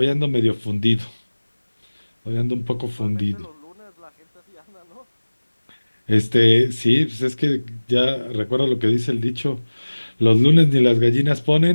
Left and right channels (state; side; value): inverted; both; correlation -1.00